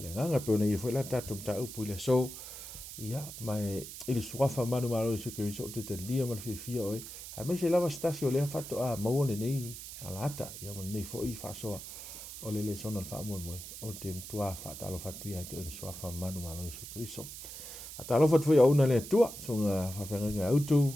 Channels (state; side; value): noise; right; hiss, 11 dB below the sound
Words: pe ona ia foʻi la tatou mataupu i le aso ia mae i le suafa malumalo i se keriso o te talia ma le fiafia oe ae mai se lava stasi o lea faatoʻā maua lenei alaata ia ma lenei foʻi faasoa o le lesona le faamoemoe o te matuā faatalofa atu ia te o le suafa malumalo i se keriso atalofa atu foi auna le atua soga faafeagaga